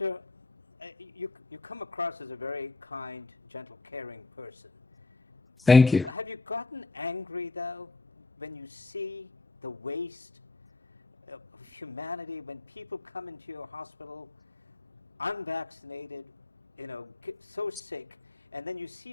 you come across as a very kind, gentle, caring person. Thank you. Have you gotten angry, though, when you see the waste of humanity, when people come into your hospital unvaccinated, so sick, and then you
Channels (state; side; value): quieter; right; 3.5 dB